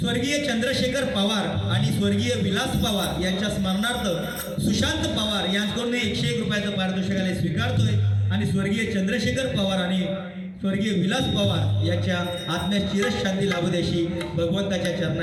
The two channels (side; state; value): both; identical; correlation 1.00